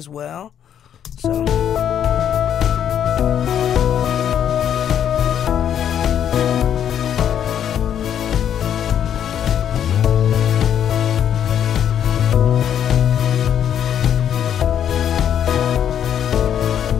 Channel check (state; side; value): quieter; right; 9.4 dB